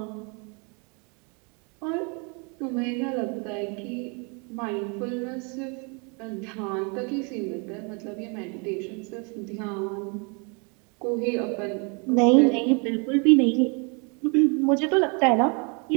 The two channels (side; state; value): left; quieter; 33.9 dB